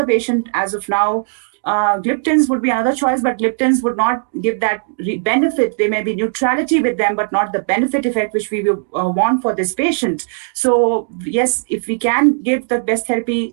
patient as of now. Gliptins would be another choice, but gliptins would not give that benefit. There may be neutrality with them, but not the benefit effect which we will want for this patient. So yes, if we can give the best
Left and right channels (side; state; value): left; silent; 68 dB below the other